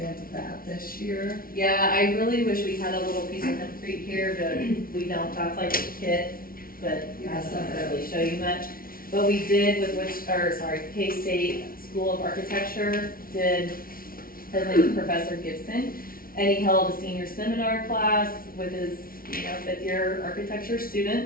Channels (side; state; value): right; late; 0.43 ms